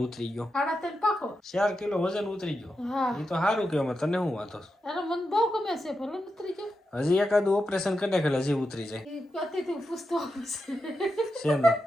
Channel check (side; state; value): both; normal; correlation 0.88